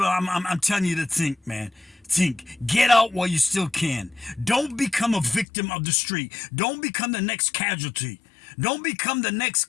I'm telling you to think, man. Think. Get out while you still can. Don't become a victim of the street. Don't become the next casualty. Don't become the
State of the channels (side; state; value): right; drops out; at 5.5 s